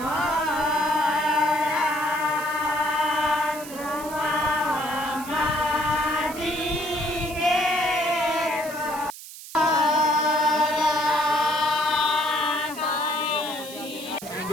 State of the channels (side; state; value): right; noise; hiss, 14 dB below the sound